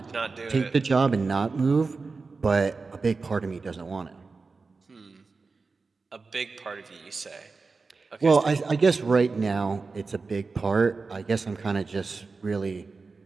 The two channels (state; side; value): quieter; left; 4.2 dB